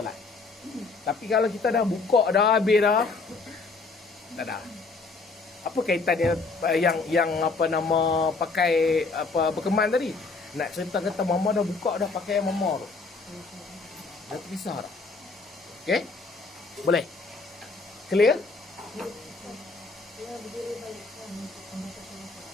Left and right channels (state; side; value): quieter; right; 4.0 dB